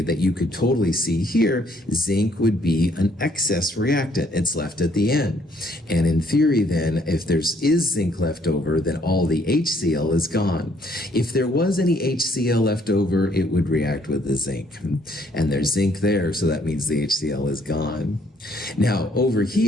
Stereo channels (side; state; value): both; normal; correlation 0.65